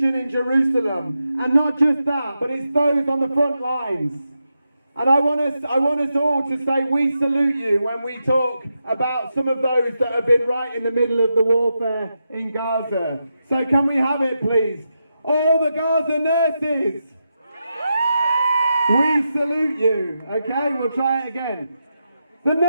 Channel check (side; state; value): both; inverted; correlation -0.86